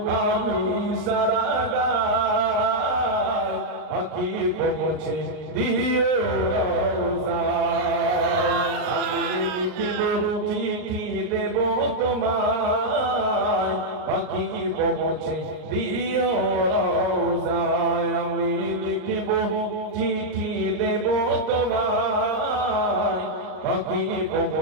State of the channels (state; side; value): late; left; 38 ms